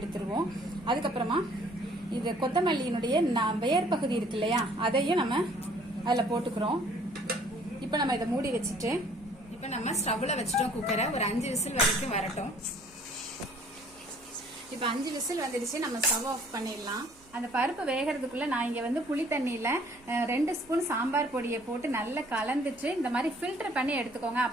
எடுத்துருவோம். அதுக்கப்புறமா இது கொத்தமல்லியினுடைய வேர் பகுதி இருக்கு இல்லையா, அதையும் நம்ம அதில் போட்டுக்கிறோம். இப்போ நம்ம இதை மூடி வச்சுட்டு இப்போ நம்ம ஸ்டவ்ல வச்சுட்டோம். குக்கரை ஒரு 5 விசில் வரைக்கும் வரட்டும். இப்போ 5 விசில் வந்துடுச்சு. நம்ம ஸ்டவ் ஆஃப் பண்ணிடலாம். அந்த பருப்பு வேகிறதுக்குள்ள நான் இங்க வந்து புளி தண்ணியில 2 ஸ்பூன் சாம்பார் பொடியை போட்டு நல்லா கலந்துட்டு இந்த மாதிரி ஃபில்டர் பண்ணி எடுத்துக்கோங்க.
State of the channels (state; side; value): noise; right; hum, 28 dB below the sound